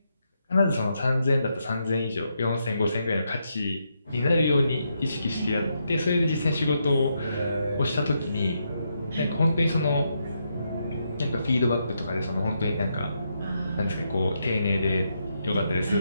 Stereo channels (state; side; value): inverted; both; correlation -0.81